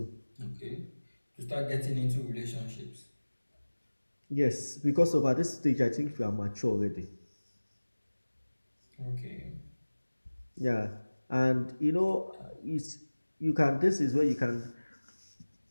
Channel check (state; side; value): inverted; both; correlation -1.00